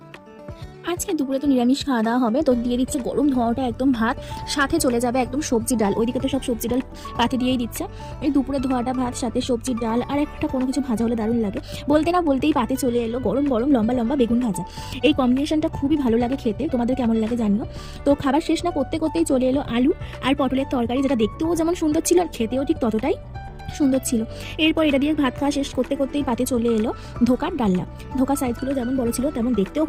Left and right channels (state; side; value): identical; both; correlation 1.00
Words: আজকে দুপুরে তো নিরামিষ খাওয়া দাওয়া হবে, তো দিয়ে দিচ্ছে গরম ধোঁয়াটা একদম ভাত, সাথে চলে যাবে একদম সবজি ডাল। ওইদিকে তো সব সবজি ডাল পাতে দিয়েই দিচ্ছে। এই দুপুরে ধোয়াটা ভাত, সাথে সবজির ডাল আর একটা কোনো কিছু ভাজা হলে দারুণ লাগে। বলতে না বলতেই পাতে চলে এলো গরম গরম লম্বা লম্বা বেগুন ভাজা। এই কম্বিনেশনটা খুবই ভালো লাগে খেতে, তোমাদের কেমন লাগে জানিও। তো খাবার শেষ না করতে করতেই চলে এলো আলু আর পটলের তরকারি, যেটা দেখতেও যেমন সুন্দর ছিল আর খেতেও ঠিক ততটাই সুন্দর ছিল। এরপর এটা দিয়ে ভাত খাওয়া শেষ করতে করতেই পাতে চলে এলো ধোকার ডালনা। ধোকার সাইজগুলো যেমন বড় ছিল তেমন দেখতেও